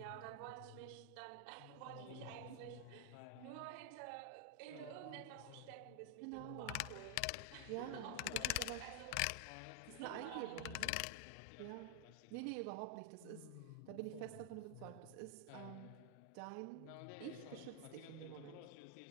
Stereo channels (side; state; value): both; different; correlation 0.00